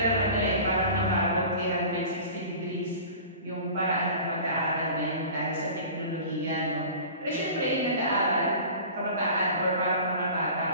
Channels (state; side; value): inverted; both; correlation -0.39